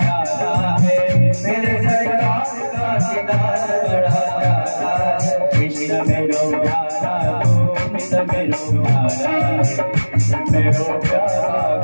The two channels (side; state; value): both; inverted; correlation -1.00